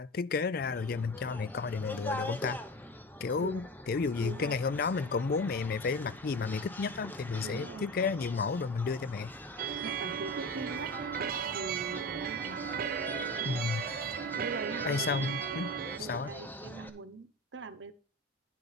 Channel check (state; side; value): normal; both; correlation 0.29